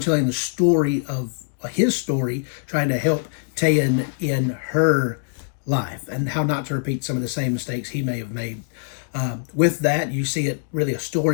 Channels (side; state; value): right; silent; digital silence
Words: the story of his story, trying to help Tayan in her life and how not to repeat some of the same mistakes he may have made. With that, you see it really a